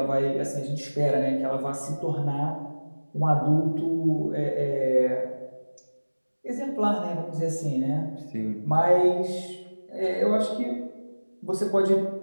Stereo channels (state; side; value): inverted; both; correlation -1.00